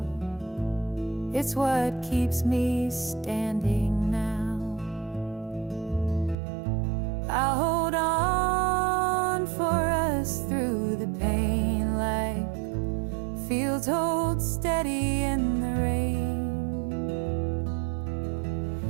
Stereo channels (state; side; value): drops out; left; at 6.4 s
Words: It's what keeps me standing now. I'll hold on for us through the pain, like fields hold steady in the rain.